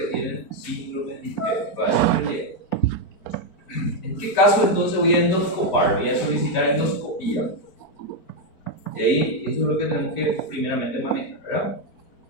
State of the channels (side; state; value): right; late; 4.5 ms